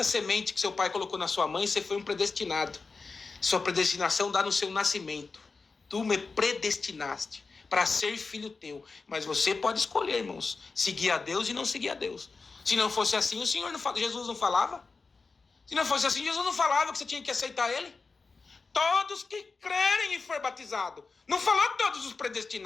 semente que seu pai colocou na sua mãe, você foi um predestinado. Sua predestinação dá no seu nascimento. Tu me predestinaste para ser filho teu. Mas você pode escolher, irmãos, seguir a Deus e não seguir a Deus. Se não fosse assim, Jesus não falava? Se não fosse assim, Jesus não falava que você tinha que aceitar Ele? Todos que crerem e for batizado. Não falou todos os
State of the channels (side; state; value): right; quieter; 4.3 dB